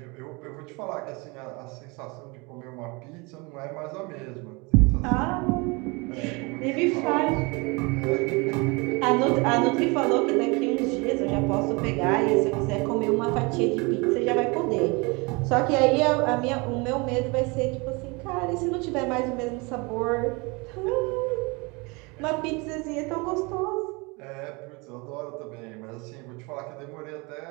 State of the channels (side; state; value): left; quieter; 27.7 dB